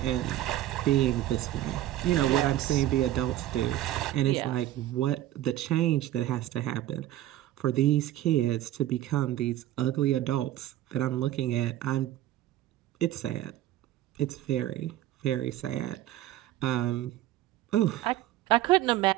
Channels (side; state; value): left; quieter; 13.8 dB